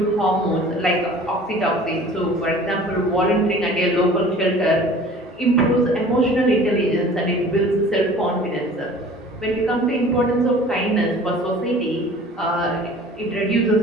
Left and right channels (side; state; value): both; normal; correlation 0.46